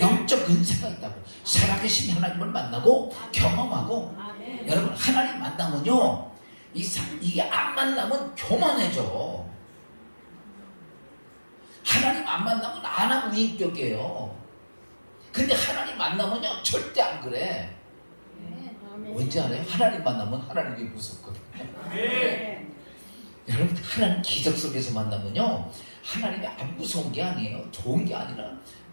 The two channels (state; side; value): inverted; both; correlation -1.00